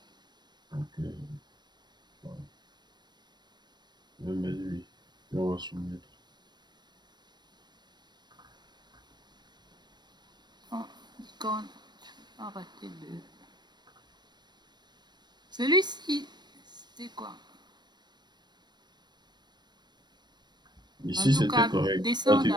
Donc, je vais mettre oui. Et on va soumettre. Oh, icône, arrêtez de. Celui-ci, c'était quoi? En Ici, tout c'était cas, correct. descends d'abord.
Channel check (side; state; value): left; late; 0.21 ms